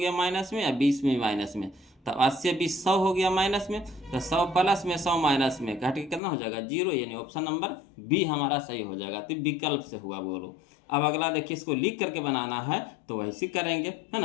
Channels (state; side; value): drops out; right; at 6.2 s